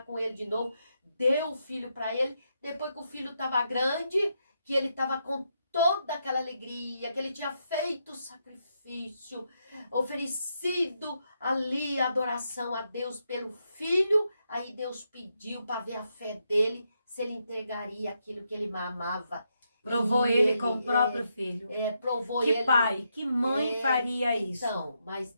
com ele de novo, deu o filho para ele, depois que o filho estava grande, que ele estava com toda aquela alegria, que ele tinha feito o sacrifício, oferecido ali a adoração a Deus pelo filho, aí Deus pediu para ver a fé dele, se ele entregaria aquilo que ele amava. Provou ele com o próprio filho. Provou que ele. Que pai, que mãe faria isso? Então, mas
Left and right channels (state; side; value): inverted; both; correlation -0.81